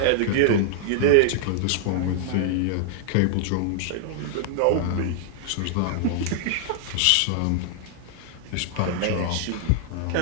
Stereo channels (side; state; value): both; different; correlation -0.01